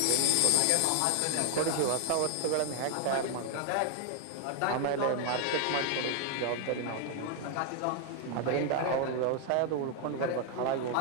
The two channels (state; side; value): different; both; correlation 0.00